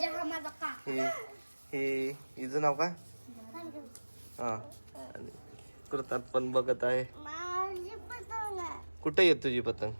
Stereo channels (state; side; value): inverted; both; correlation -1.00